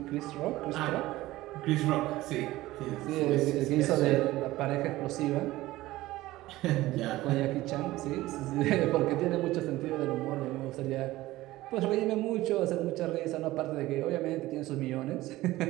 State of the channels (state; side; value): quieter; left; 17.3 dB